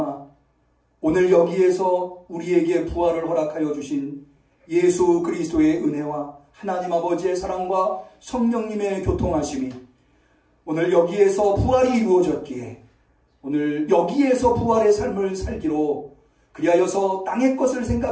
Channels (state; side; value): identical; both; correlation 1.00